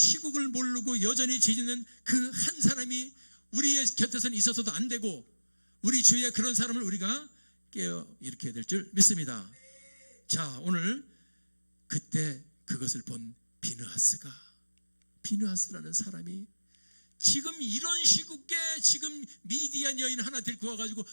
모르고 여전히 죄짓는 그 한 사람이 우리의 곁에서는 있어서도 안 되고, 우리 주위에 그런 사람을 우리가 깨어 일으켜야 될 줄 믿습니다. 자, 오늘 그때 그것을 본 비느하스라는 사람이 지금 이런 시국에 지금 미디안 여인 하나 데리고 와가지고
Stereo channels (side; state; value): both; inverted; correlation -1.00